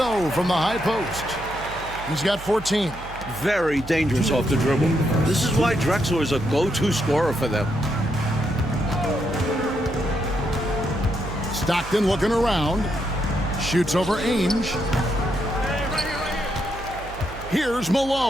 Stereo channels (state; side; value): noise; right; hum, 14 dB below the sound